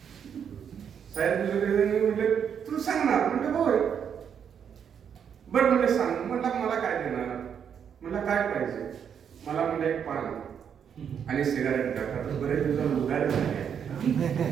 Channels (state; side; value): quieter; left; 7.9 dB